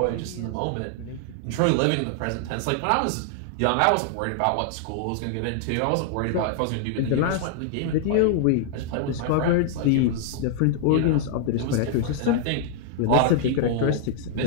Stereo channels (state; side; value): different; both; correlation -0.01